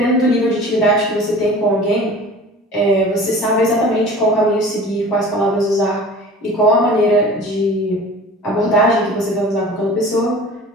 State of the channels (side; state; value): both; normal; correlation 0.41